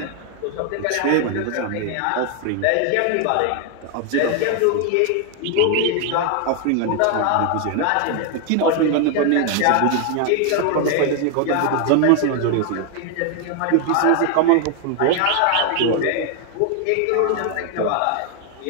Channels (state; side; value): different; both; correlation 0.00